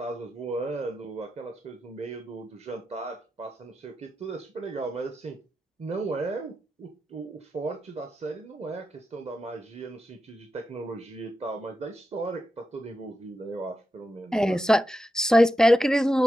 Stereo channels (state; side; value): normal; both; correlation 0.88